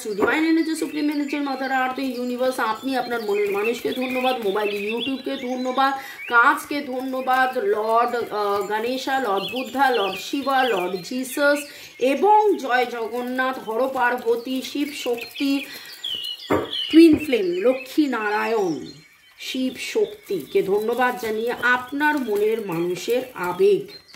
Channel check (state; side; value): identical; both; correlation 1.00